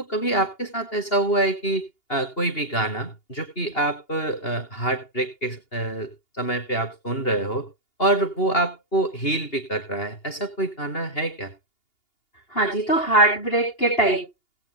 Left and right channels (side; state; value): right; late; 2.8 ms